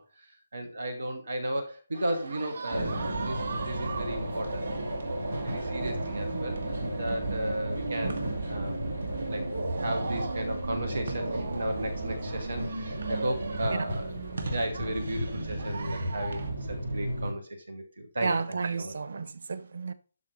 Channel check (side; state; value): both; inverted; correlation -0.88